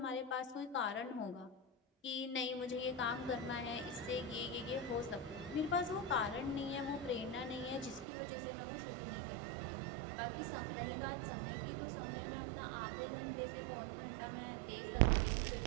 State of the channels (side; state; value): left; drops out; at 8.1 s